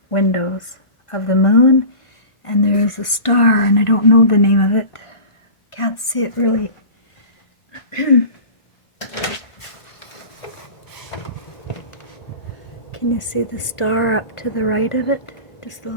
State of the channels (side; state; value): right; late; 1.4 ms